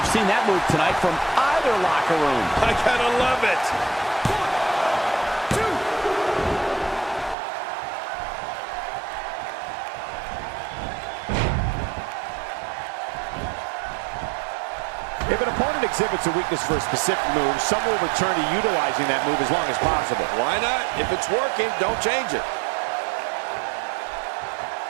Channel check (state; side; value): drops out; left; at 7.4 s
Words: seen seen that move tonight from either locker room. I gotta love it. If an opponent exhibits a weakness for a specific move, some will return to utilizing that move as long as possible. Why not? If it's working, don't change it.